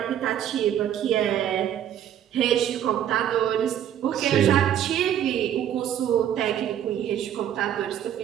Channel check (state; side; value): quieter; left; 10.3 dB